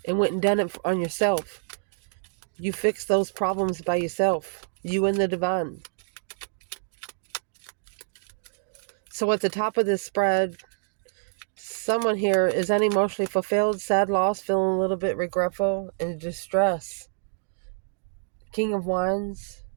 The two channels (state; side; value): silent; left; digital silence